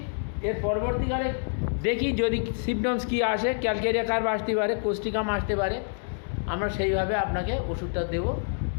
এর পরবর্তীকালে দেখি যদি সিমটমস কী আসে, ক্যালকেরিয়া কার্ভ আসতে পারে, কোস্টিকাম আসতে পারে, আমরা সেইভাবে আপনাকে ওষুধটা দেবো।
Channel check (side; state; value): right; silent; digital silence